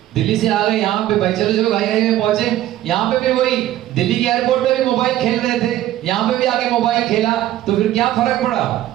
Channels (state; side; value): quieter; left; 13.7 dB